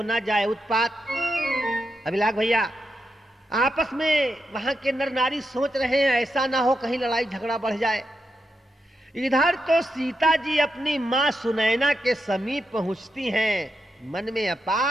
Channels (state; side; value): normal; both; correlation 0.85